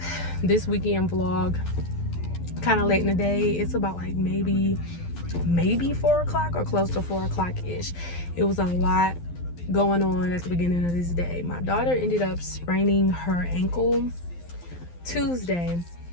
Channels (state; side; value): late; right; 12 ms